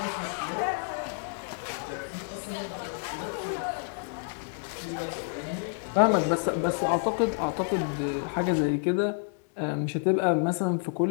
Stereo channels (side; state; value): right; silent; digital silence